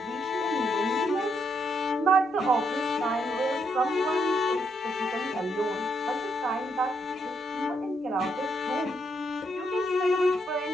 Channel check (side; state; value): both; normal; correlation 0.76